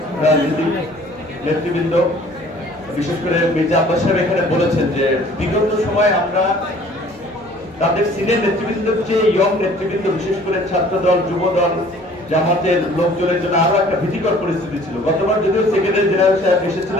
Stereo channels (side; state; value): both; normal; correlation 0.53